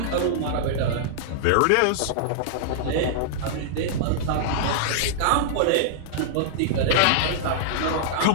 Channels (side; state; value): both; different; correlation -0.02